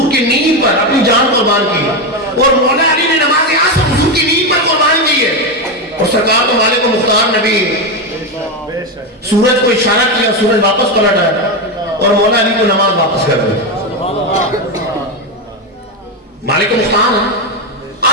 کی نیند پر اپنی جان قربان کی. اور مولا علی نے نماز عصر حضور کی نیند پر قربان کی ہے. اور سرکار تو مالک و مختار نبی سورج کو اشارہ کیا, سورج واپس پلٹ آیا اور مولا علی کو نماز واپس کر دی. مالک و مختار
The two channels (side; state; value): both; normal; correlation 0.11